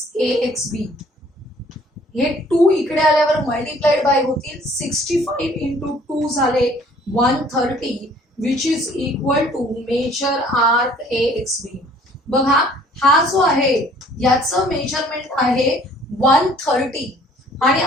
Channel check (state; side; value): normal; both; correlation 0.56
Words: हे 2 इकडे आल्यावर मल्टिप्लाइड बाय होतील. 65 इंटू 2 झाले 130 which is equal to major arc AXB. बघा, हा जो आहे याचं मेजरमेंट आहे 130 आणि